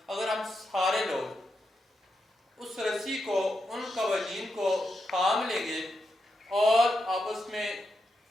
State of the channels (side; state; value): both; normal; correlation 0.85